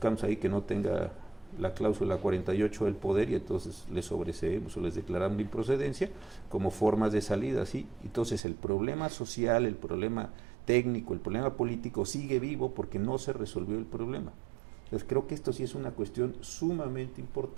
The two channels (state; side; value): drops out; left; at 8.4 s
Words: ahí que no tenga la cláusula 48 del poder, y entonces les sobreseemos o les declaramos la improcedencia como formas de salida, ¿sí? Entonces el problema social, el problema técnico, el problema político sigue vivo porque no se resolvió el problema. Entonces creo que esto sí es una cuestión sumamente